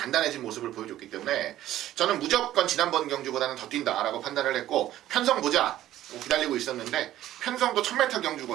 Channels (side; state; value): left; quieter; 13.4 dB